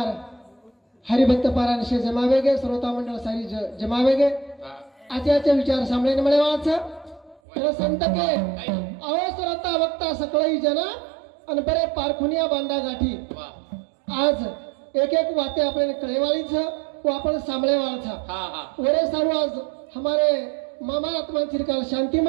हरिभक्त पारायण शे जमावेगे श्रोता मंडळ सारी जमावेगे हा आचार्य विचार सांभळीने मळे वाच तर संत के अवसरता वक्ता सकळई जना आणि बरे पारखुनिया बांधा गाठी वा आज एक एक वाते आपल्याला कळेवाळीच व आपण सांभळेवाळचा हा हा वरे सर्व आज हमारे मामा आत्मा चिरकाल शांती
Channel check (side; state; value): left; drops out; at 7.4 s